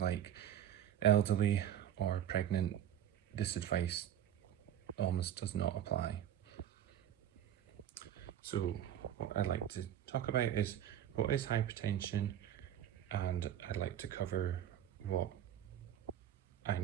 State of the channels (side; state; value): left; quieter; 10.6 dB